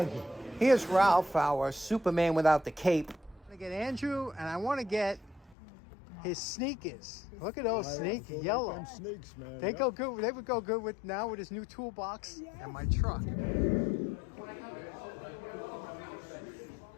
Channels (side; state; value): right; drops out; at 5.6 s